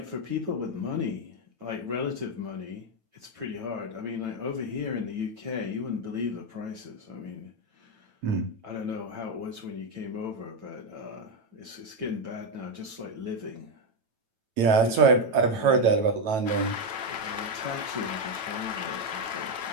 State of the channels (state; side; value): late; left; 9.0 ms